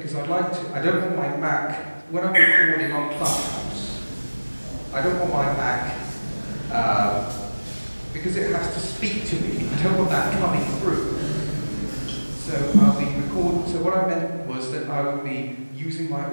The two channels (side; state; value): both; inverted; correlation -1.00